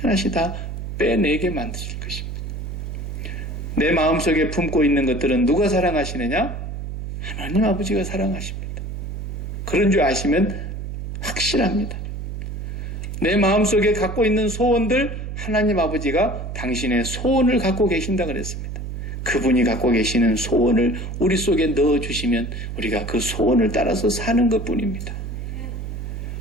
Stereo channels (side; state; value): right; noise; hum, 6 dB below the sound